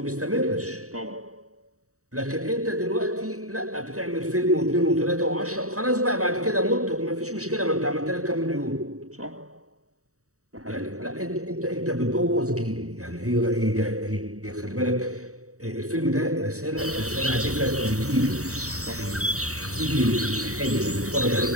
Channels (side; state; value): left; late; 0.65 ms